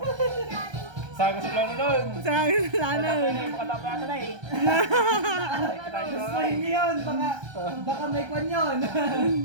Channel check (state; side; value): late; left; 1.3 ms